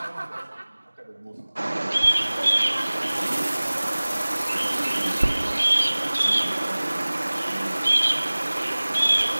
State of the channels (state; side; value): inverted; both; correlation -1.00